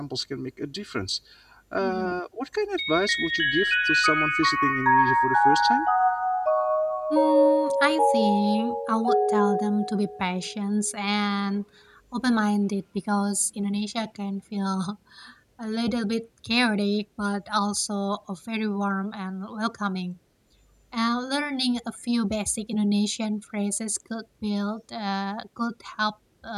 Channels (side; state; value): both; identical; correlation 1.00